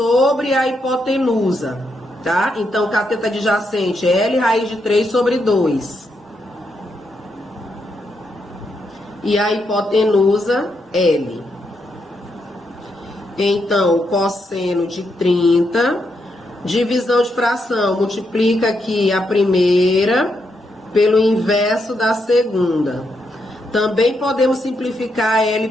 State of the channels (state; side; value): normal; both; correlation 0.81